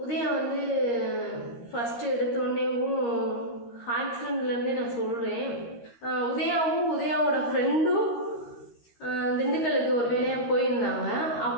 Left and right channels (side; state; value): right; late; 13 ms